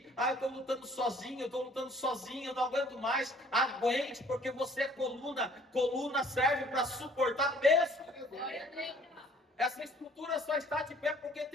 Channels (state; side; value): normal; both; correlation 0.56